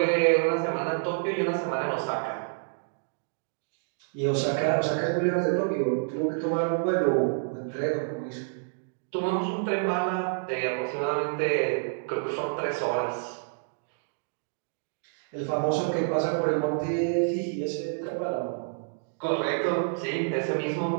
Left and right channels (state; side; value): silent; left; digital silence